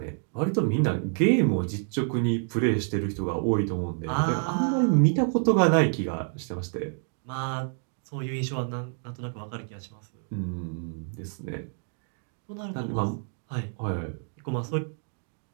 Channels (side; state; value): left; silent; 59 dB below the other